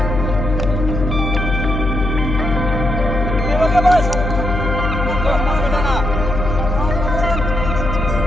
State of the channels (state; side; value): noise; left; hum, 2 dB below the sound